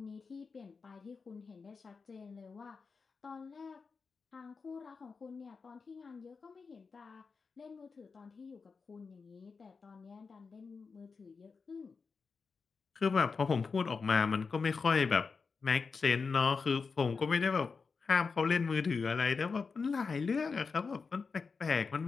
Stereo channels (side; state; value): right; quieter; 4.9 dB